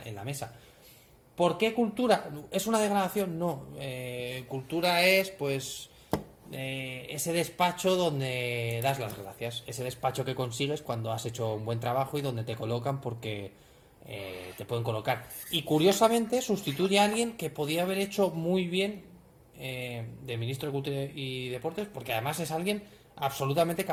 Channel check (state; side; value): identical; both; correlation 1.00